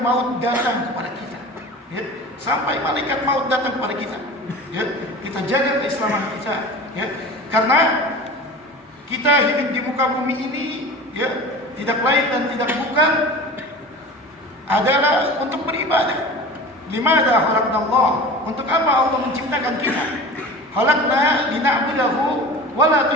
datang kepada kita. Ya, sampai malaikat maut datang kepada kita. Ya, kita jaga keislaman kita. Ya, karena kita hidup di muka bumi ini, ya, tidak lain dan tidak bukan adalah untuk beribadah. Limadha khalaqnallah? Untuk apa Allah menciptakan kita? Khalaqna lina'budahu wa la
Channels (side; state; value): both; normal; correlation 0.36